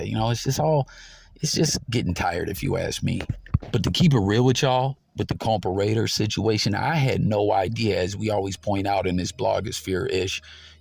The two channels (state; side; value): identical; both; correlation 1.00